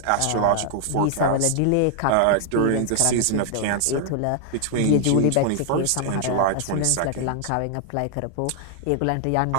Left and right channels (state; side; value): different; both; correlation 0.00